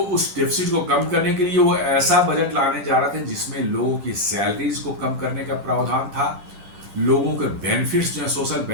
डेफिसिट को कम करने के लिए वो ऐसा बजट लाने जा रहे थे जिसमें लोगों की सैलरीज को कम करने का प्रावधान था, लोगों के बेनिफिट्स जो है, सोशल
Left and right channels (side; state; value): left; late; 10 ms